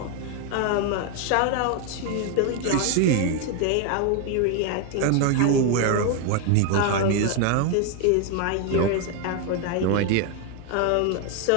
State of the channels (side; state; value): both; different; correlation 0.01